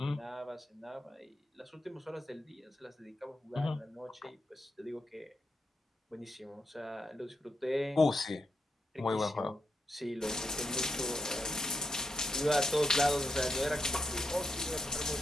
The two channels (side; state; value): both; normal; correlation 0.84